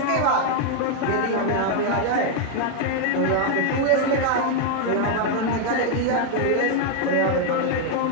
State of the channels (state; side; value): different; both; correlation 0.00